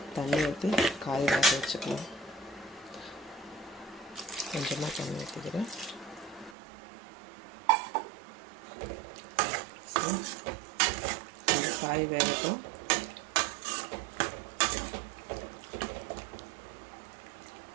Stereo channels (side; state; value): left; drops out; at 6.6 s